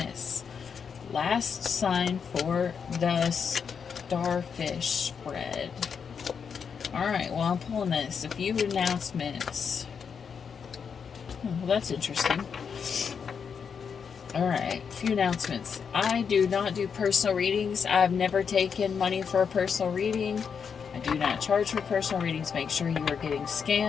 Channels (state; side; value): quieter; right; 6.5 dB